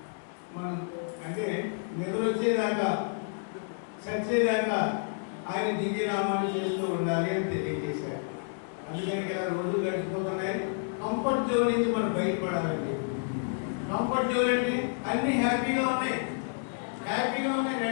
మనం అంటే నిద్ర వచ్చేదాకా, చచ్చేదాకా ఆయన దివ్యనామాన్ని చేస్తూ ఉండాలి అని తెలియజేశారు. అందుకని ఇలా రోజులు గడిచిపోతున్నాయి. కంఫర్ట్ జోన్ నుంచి మనం బయటపడాలండి. కంఫర్ట్ జోన్ అంటే అన్ని హ్యాపీగా ఉన్నాయి,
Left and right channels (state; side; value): silent; right; digital silence